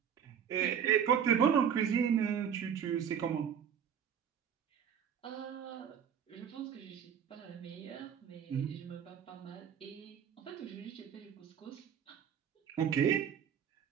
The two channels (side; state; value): left; quieter; 8.3 dB